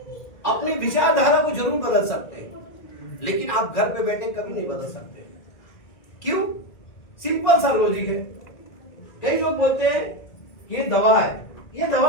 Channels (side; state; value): right; late; 1.9 ms